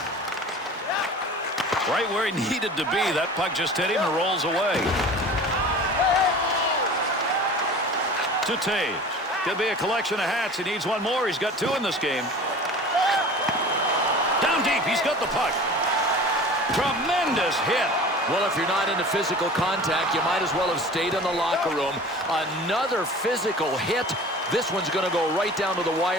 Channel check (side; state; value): both; normal; correlation 0.40